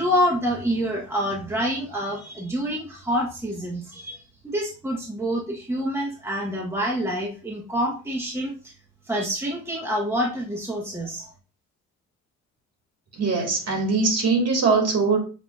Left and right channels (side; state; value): both; normal; correlation 0.30